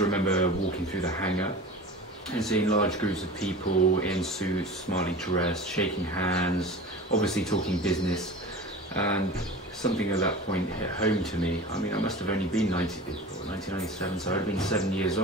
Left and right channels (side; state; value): both; normal; correlation 0.35